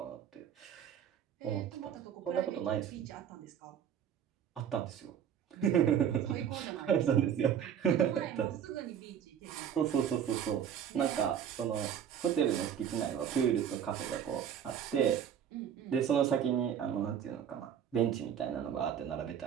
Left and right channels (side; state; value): left; quieter; 8.8 dB